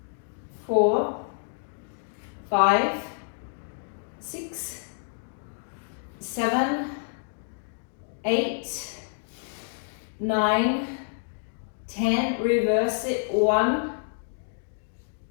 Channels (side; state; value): right; silent; digital silence